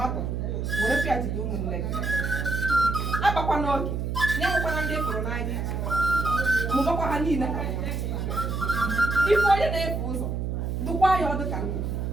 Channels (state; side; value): noise; right; hum, 2 dB below the sound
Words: were pịajide ụmụnne gị akpakwa n'oge nye nwekwana ndị fụrụ n'anya mụbakwa ha niile ife onye na-efe ụzọ dụkwa ya ọdụ ka nna